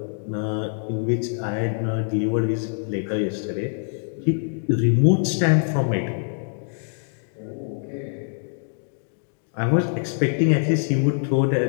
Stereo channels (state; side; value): silent; right; digital silence